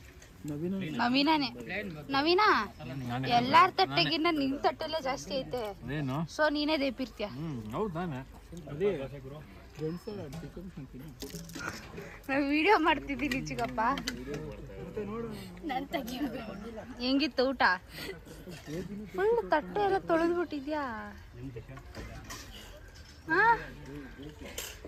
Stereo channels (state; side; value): identical; both; correlation 1.00